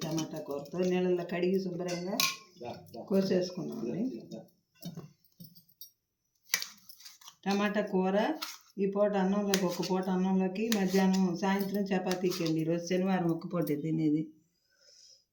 టమాటా కూరతో నీళ్ళల్లో కడిగి శుభ్రంగా కోసేసుకున్నామండి. టమాటా కూర ఈ పూట అన్నంలోకి, ఒక్క పూట అన్నంలోకి, మధ్యాహ్నం సాయంత్రం చపాతీకి అండి. ఈరోజు శనివారం ఒక్క పూటే తినేది.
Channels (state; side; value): identical; both; correlation 1.00